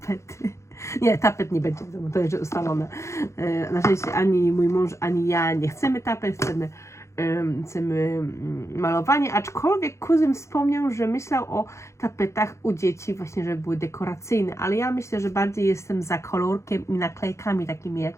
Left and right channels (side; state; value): right; late; 0.14 ms